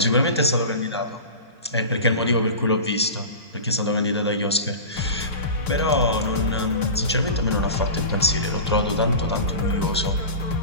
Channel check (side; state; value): both; inverted; correlation -0.31